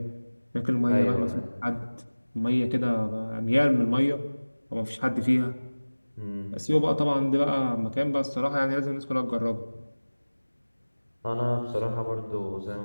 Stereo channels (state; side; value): inverted; both; correlation -1.00